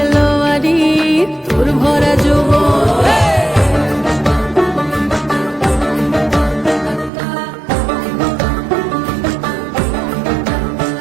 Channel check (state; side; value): drops out; left; at 7.1 s